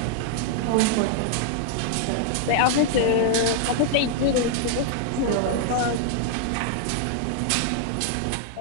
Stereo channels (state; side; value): different; both; correlation 0.00